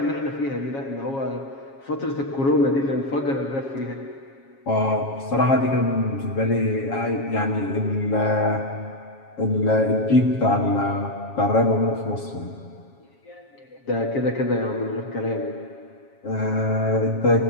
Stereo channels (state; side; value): late; right; 7.3 ms